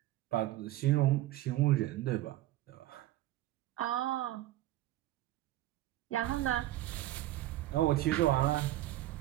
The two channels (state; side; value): quieter; left; 15.3 dB